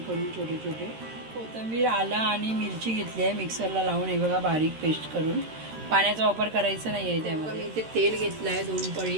करून छोटे छोटे. कोथिंबीर, आलं आणि मिरची घेतली आहे मिक्सरला लावून. हे बघा बारीक पेस्ट करून. पाण्याचा वापर करायचा नाही आहे त्यामध्ये. इथे तेल घेतलं आहे 2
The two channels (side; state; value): left; late; 13 ms